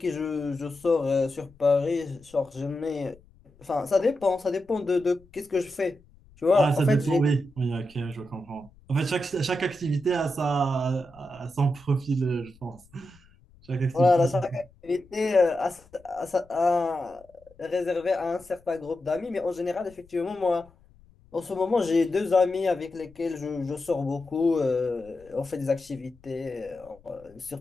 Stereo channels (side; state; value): left; noise; rumble, 27 dB below the sound